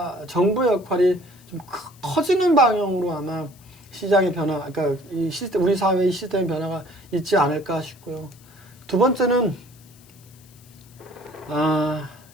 정부의 역할이 좀 커지는 방향으로 아마 시장의 변화, 그러니까 이 시스템, 우리 사회의 시스템 변화가 있지 않을까 싶고요. 두 번째는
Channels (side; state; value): left; noise; hiss, 26 dB below the sound